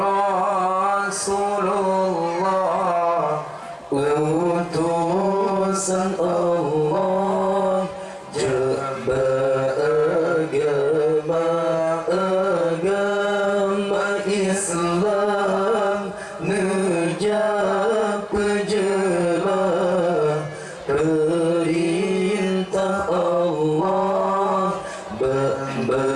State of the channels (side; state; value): both; identical; correlation 1.00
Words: Rasulullah, utusan Allah, agama Islam, nejak pejelah perintah Allah,